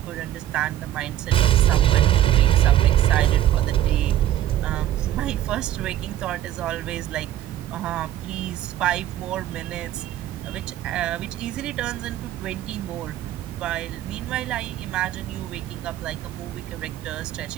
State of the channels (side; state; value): left; quieter; 12.7 dB